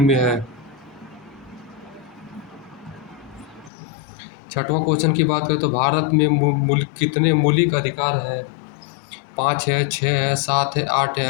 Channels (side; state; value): right; drops out; at 3.7 s